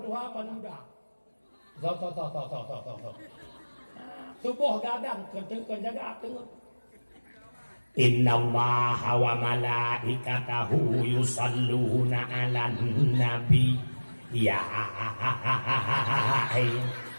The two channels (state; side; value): inverted; both; correlation -1.00